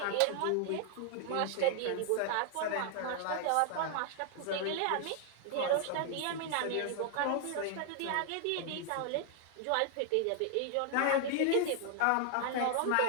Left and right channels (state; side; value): different; both; correlation 0.00